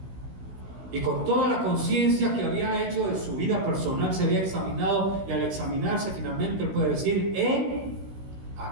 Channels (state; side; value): late; left; 16 ms